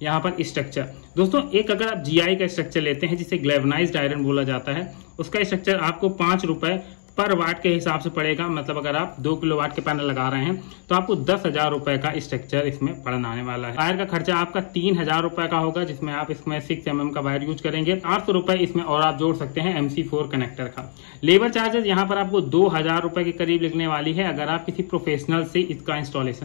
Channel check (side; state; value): right; silent; 63 dB below the other